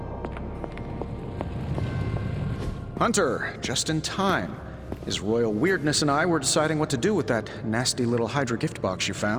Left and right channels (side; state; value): both; identical; correlation 1.00